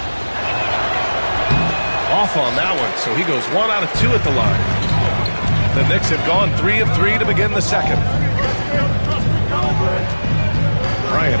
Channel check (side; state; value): both; inverted; correlation -1.00